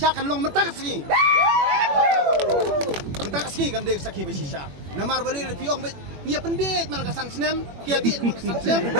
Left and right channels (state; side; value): late; left; 21 ms